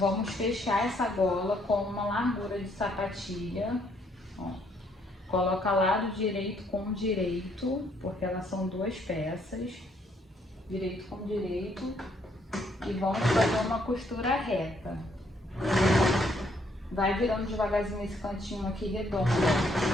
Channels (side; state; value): both; normal; correlation 0.69